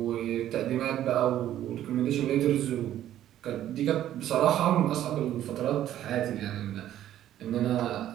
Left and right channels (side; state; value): left; quieter; 12.1 dB